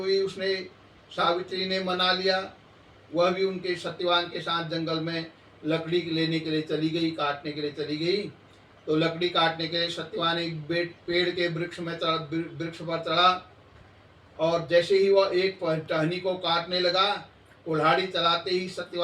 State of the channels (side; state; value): both; identical; correlation 1.00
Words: उसने सावित्री ने मना लिया। वह भी उनके सत्यवान के साथ जंगल में लकड़ी लेने के लिए चली गई, काटने के लिए चली गई। तो लकड़ी काटने के लिए सत्यवान एक पेड़ के वृक्ष पर चढ़ा, और जैसे ही वह एक टहनी को काटने लगा, कुल्हाड़ी चलाते ही